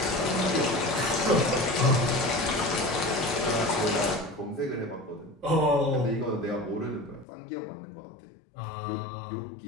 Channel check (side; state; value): right; drops out; at 7.2 s